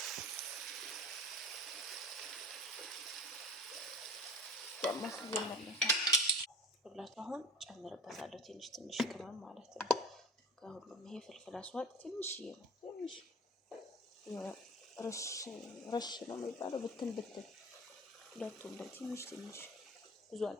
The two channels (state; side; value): normal; both; correlation 0.37